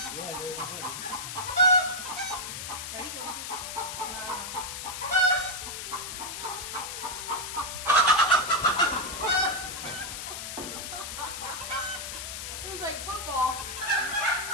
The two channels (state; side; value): noise; left; hiss, 6 dB below the sound